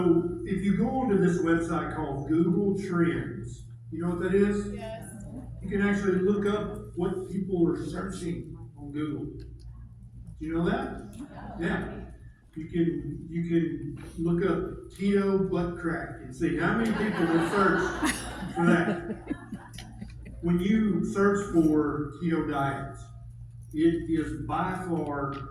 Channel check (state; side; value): identical; both; correlation 1.00